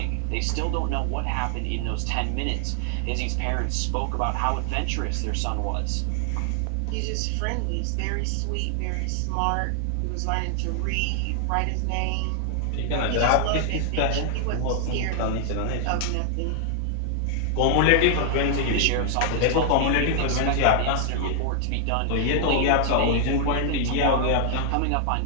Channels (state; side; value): different; both; correlation 0.00